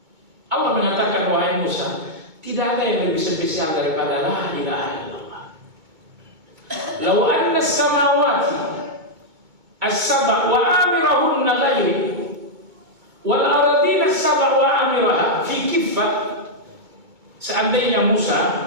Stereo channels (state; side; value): late; left; 2.2 ms